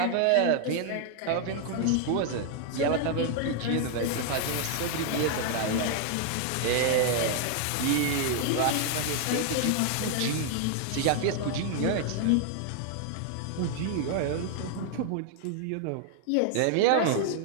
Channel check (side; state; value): both; different; correlation 0.00